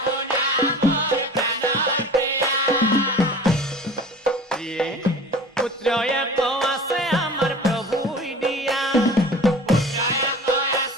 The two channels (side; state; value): both; normal; correlation 0.40